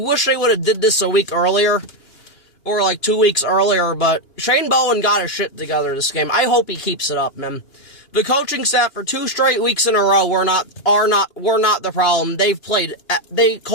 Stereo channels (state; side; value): late; right; 2.8 ms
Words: they would have did this a week earlier, or like 2 weeks earlier, but Shane Bowen got his shit together this game. I hope he keeps it up, man. The coaching staff for 2 straight weeks in a row were not the problem. They